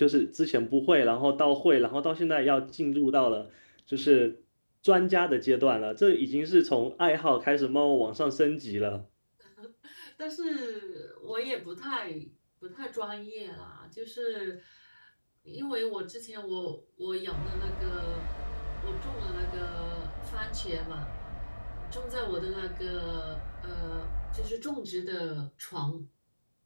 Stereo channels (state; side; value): inverted; both; correlation -1.00